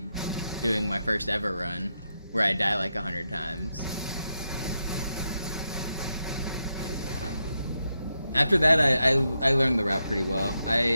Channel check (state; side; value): inverted; both; correlation -0.85